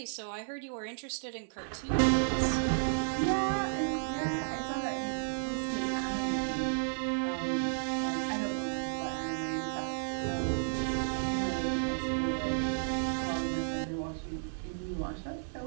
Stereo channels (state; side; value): silent; left; 56 dB below the other